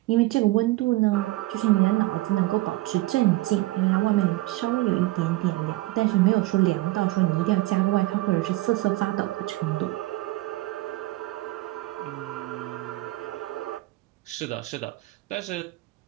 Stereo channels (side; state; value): left; quieter; 18.9 dB